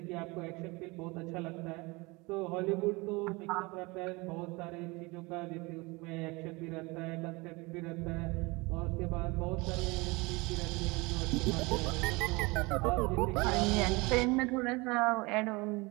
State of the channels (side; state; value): left; quieter; 25.1 dB